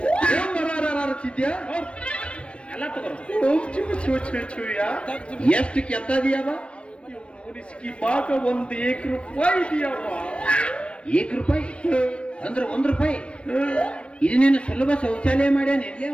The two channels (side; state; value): right; late; 0.059 ms